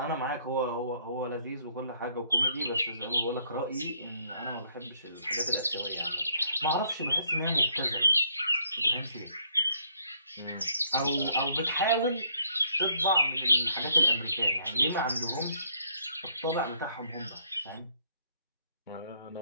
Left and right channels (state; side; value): inverted; both; correlation -0.68